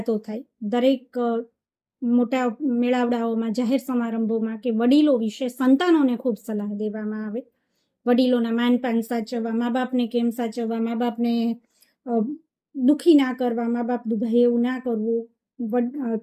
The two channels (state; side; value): identical; both; correlation 1.00